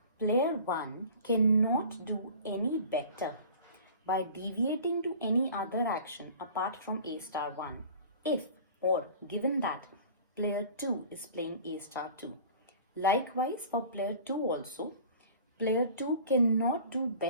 player 1 cannot do any better by deviating to any other action apart from A star 1 if or given that player 2 is playing A star 2. Likewise for player 2 also, player 2 cannot do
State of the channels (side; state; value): both; inverted; correlation -0.43